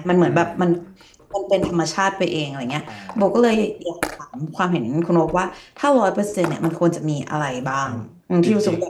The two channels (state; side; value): identical; both; correlation 1.00